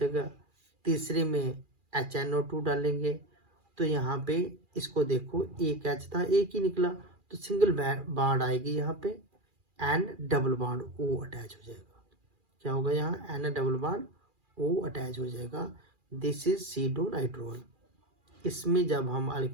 तीसरे में HNO2 डालेंगे, तो यहाँ पे इसको देखो, एक H था एक ही निकला, तो सिंगल बॉन्ड आएगी यहाँ पे and double bond O attach हो जाएगा। क्या होगा यहाँ, N double bond O attach हो जाएगा। This is pseudonitrole. इसमें जब हम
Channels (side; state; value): left; late; 2.4 ms